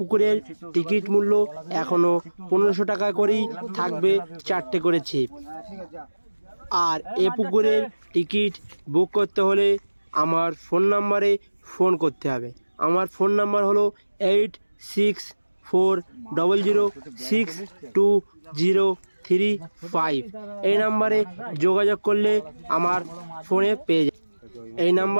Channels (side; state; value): both; inverted; correlation -1.00